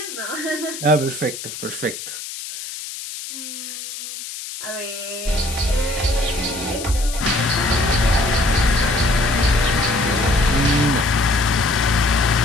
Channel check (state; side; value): noise; left; hiss, 10 dB below the sound